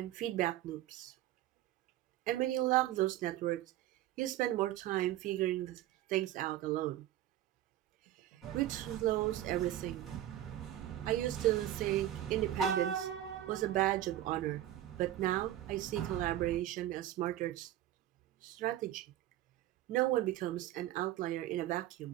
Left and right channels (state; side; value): quieter; left; 13.3 dB